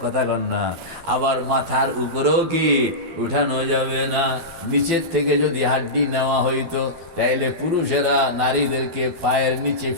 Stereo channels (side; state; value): left; late; 12 ms